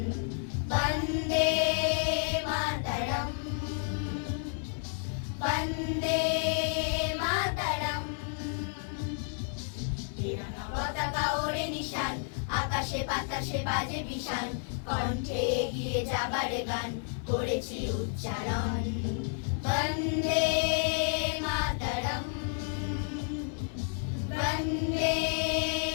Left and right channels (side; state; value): right; silent; 57 dB below the other